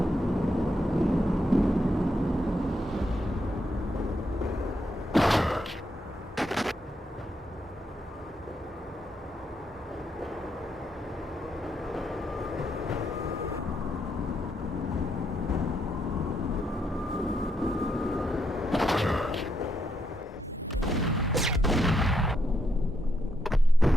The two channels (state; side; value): normal; both; correlation 0.79